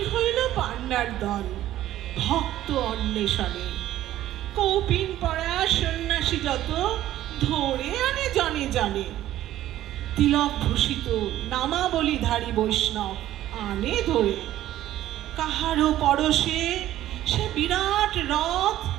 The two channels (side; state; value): left; quieter; 13.5 dB